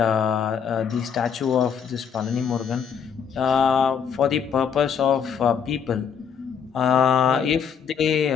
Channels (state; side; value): quieter; right; 7.2 dB